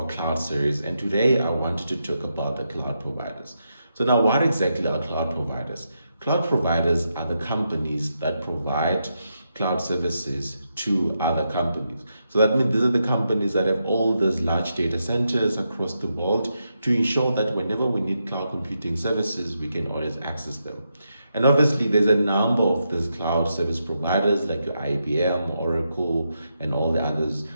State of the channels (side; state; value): both; inverted; correlation -0.84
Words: cloud series, and today I wanted to talk about the cloud providers. So now, what exactly are cloud providers? Cloud providers are the companies that provide cloud services to other companies. So that means these are the companies that have all these large data centers across the world to ensure that whenever we need cloud computing services, we can always access them. And obviously, there's a number of these cloud service providers like your IBM, Oracle, and all the others.